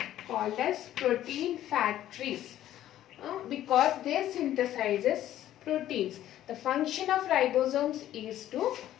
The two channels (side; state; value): right; quieter; 12.6 dB